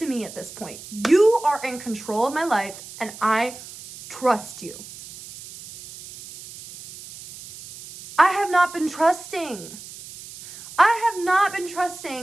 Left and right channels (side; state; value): right; noise; hiss, 15 dB below the sound